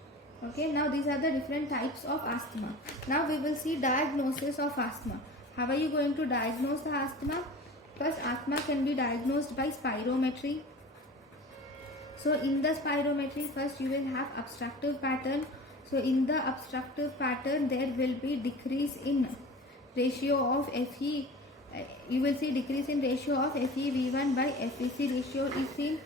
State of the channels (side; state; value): both; normal; correlation 0.38